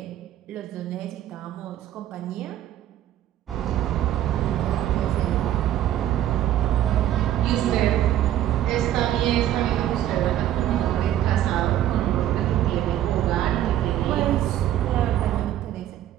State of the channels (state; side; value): quieter; left; 12.2 dB